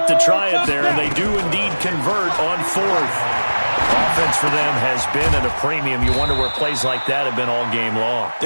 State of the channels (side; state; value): both; inverted; correlation -1.00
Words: to try it there, and they do indeed convert on fourth. Offense for them has been at a premium. You wonder where plays like that have been all game long.